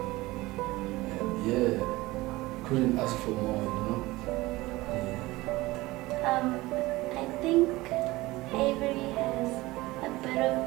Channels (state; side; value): quieter; left; 19.8 dB